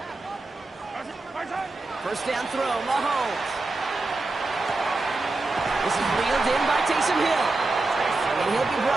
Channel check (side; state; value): left; quieter; 3.3 dB